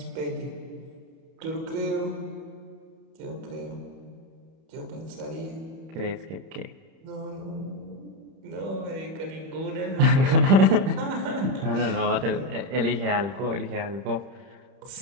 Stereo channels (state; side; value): late; left; 31 ms